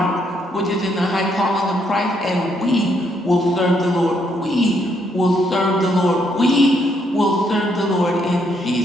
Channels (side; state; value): both; normal; correlation 0.74